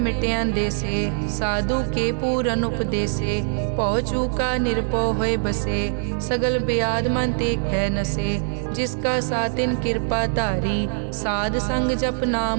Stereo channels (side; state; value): left; silent; digital silence